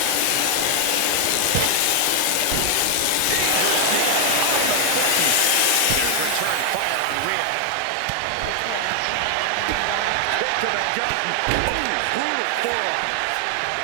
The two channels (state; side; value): different; both; correlation 0.00